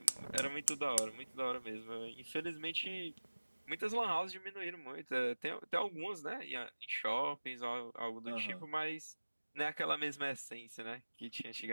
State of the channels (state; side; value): inverted; both; correlation -1.00